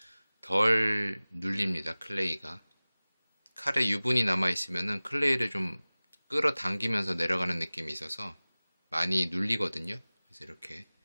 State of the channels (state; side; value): inverted; both; correlation -0.99